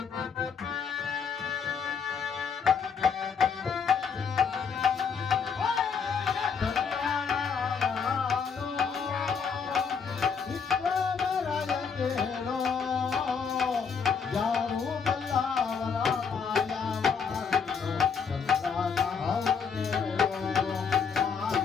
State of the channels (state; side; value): quieter; right; 6.2 dB